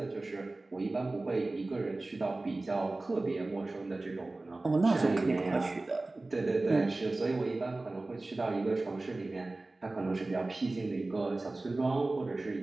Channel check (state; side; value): quieter; left; 3.0 dB